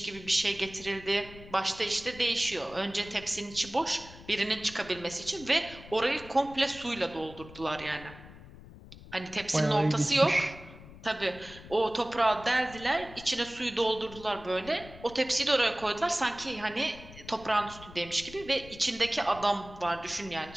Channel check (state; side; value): noise; left; rumble, 18 dB below the sound